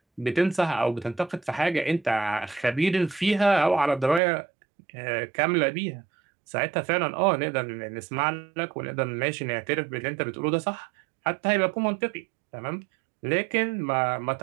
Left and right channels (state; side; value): drops out; left; at 4.2 s